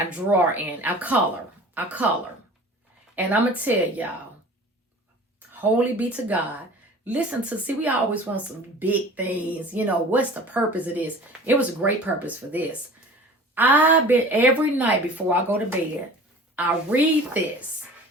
draw in. I color. And I'm going to tell y'all, holy be to God. Listen to, see, we always want some big things. You know, what's the purpose of this? It was a great purpose for this. I've been every night before I go to bed, I read this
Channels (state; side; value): normal; both; correlation 0.42